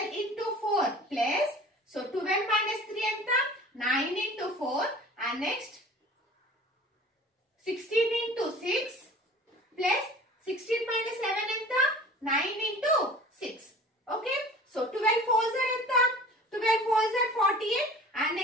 into 4 ప్లస్, సో 12 minus 3 ఎంత 9 into 4 and next 16 into 6 plus 16 minus 7 ఎంత 9 into 6. Okay, so 12 4s are ఎంత 12 4s are 48 and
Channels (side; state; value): both; normal; correlation 0.43